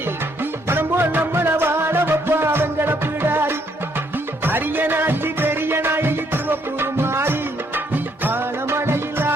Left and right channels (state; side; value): normal; both; correlation 0.70